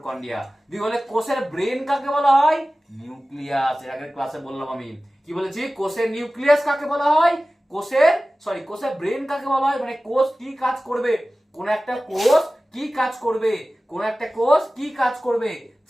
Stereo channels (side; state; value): both; normal; correlation 0.97